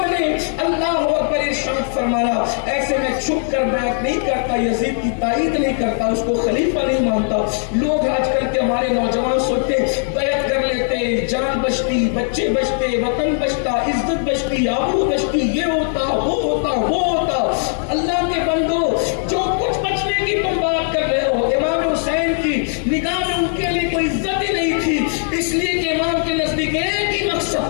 نے اللہ اکبر ارشاد فرمایا ایسے میں چھپ کر بیعت نہیں کرتا, یزید کی تائید نہیں کرتا, اس کو خلیفہ نہیں مانتا. لوگ آج کل کے ہمارے نوجوان سوچتے بیعت کر لیتے, جان بچتی, بچے بچتے, وطن بچتا, عزت بچتی, آبرو بچتی, یہ ہوتا وہ ہوتا وہ ہوتا. اللہ کے بندو جو کچھ بچنے کی تم بات کر رہے ہو, امام حسین کی نگاہ میں ان کے لیے کوئی عزت ہی نہیں تھی, اس لیے کہ امام کے نزدیک ایک ہی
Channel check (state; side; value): silent; right; 59 dB below the other